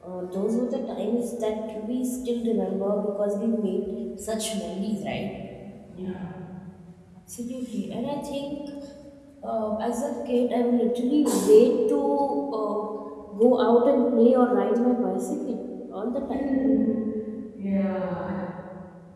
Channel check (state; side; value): identical; both; correlation 1.00